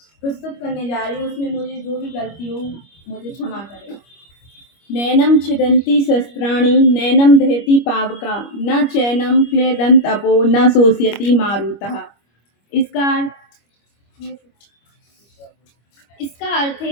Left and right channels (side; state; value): right; late; 25 ms